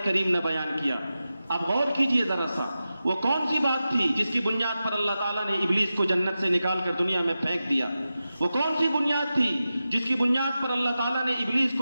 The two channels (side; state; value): both; inverted; correlation -0.92